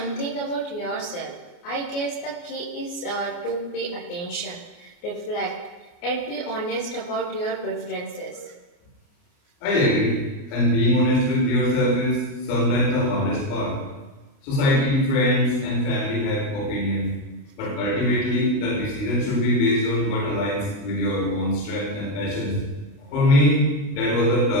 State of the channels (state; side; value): late; right; 29 ms